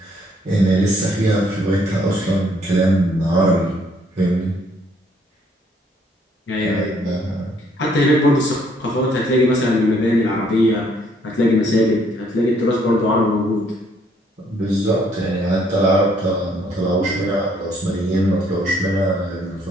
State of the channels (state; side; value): normal; both; correlation 0.66